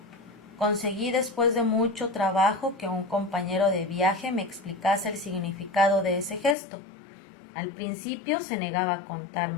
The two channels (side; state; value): right; drops out; at 6.6 s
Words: Conseguí después de mucho trabajo que un compañero de viaje me explicase el significado de ese gesto. Al principio se negaba a